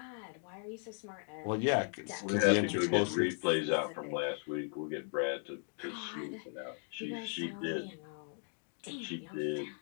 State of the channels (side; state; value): right; silent; 53 dB below the other